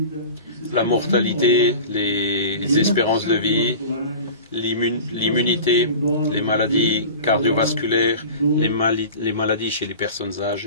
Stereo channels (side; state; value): both; inverted; correlation -0.36